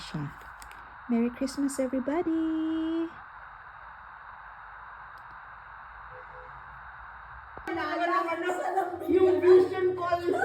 Merry Christmas, everybody! Yung vision call.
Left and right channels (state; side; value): identical; both; correlation 1.00